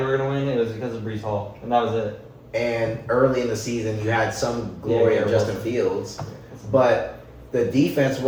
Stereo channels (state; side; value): identical; both; correlation 1.00